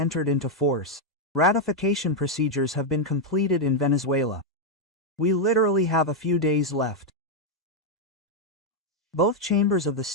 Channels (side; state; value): both; normal; correlation 0.00